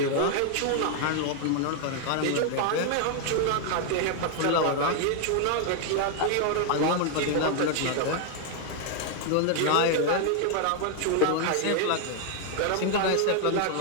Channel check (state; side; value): different; both; correlation 0.00